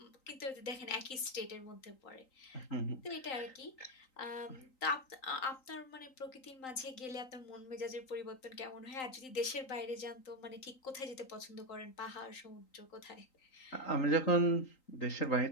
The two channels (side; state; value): right; late; 3.9 ms